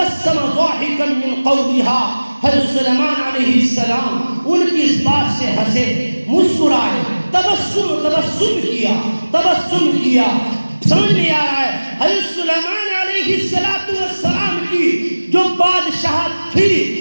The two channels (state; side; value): inverted; both; correlation -1.00